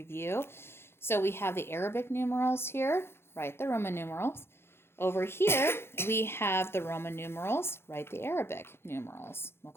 So we have the Arabic numerals here, write the Roman numerals. Over here, we have the Roman numerals, write the Arabic numerals,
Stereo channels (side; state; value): right; late; 0.12 ms